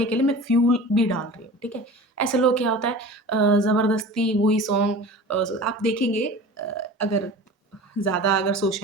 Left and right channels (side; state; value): both; normal; correlation 0.37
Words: के लिए मैं फ्यूल भी डाल रही हूँ, ठीक है? ऐसे लोग क्या होता है ज़बरदस्ती वही सॉन्ग आप देखेंगे अगर ज़्यादा अगर